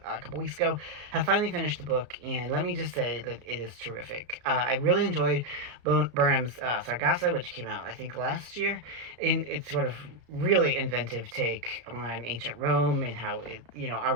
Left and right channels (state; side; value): late; left; 34 ms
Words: a couple weeks ago. Have finally finished the book, and let me just say that it is terrific. I really enjoyed Burnham's Sargasso, which came out I think last year, and it's sort of really inventive take on ancient Rome and how our